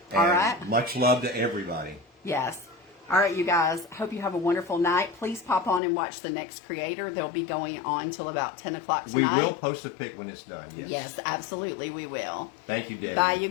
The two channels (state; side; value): drops out; right; at 5.8 s